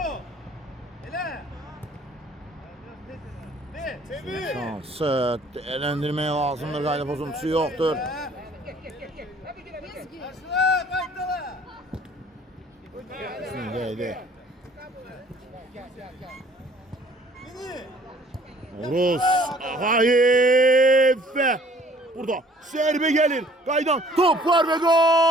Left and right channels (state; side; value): normal; both; correlation 0.56